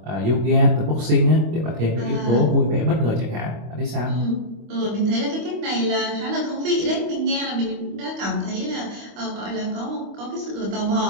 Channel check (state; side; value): late; left; 25 ms